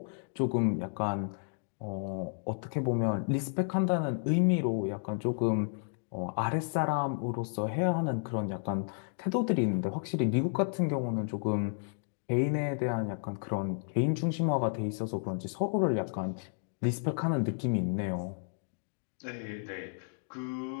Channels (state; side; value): silent; right; digital silence